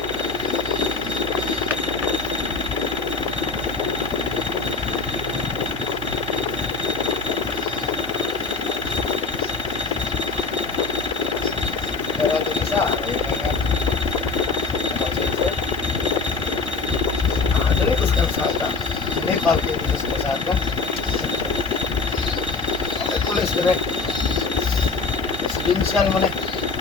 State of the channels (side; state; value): right; quieter; 4.3 dB